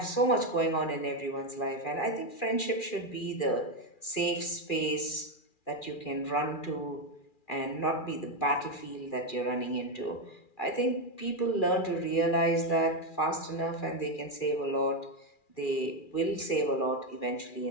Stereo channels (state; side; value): late; right; 2.4 ms